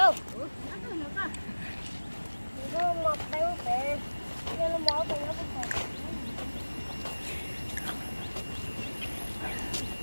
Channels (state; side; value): inverted; both; correlation -1.00